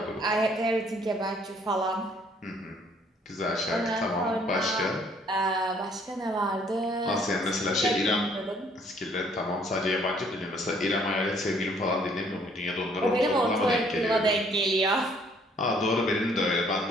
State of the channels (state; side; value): normal; both; correlation 0.62